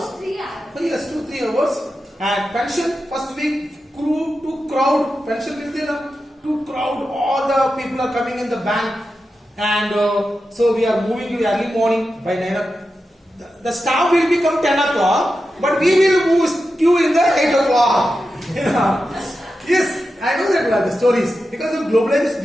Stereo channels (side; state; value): both; normal; correlation 0.90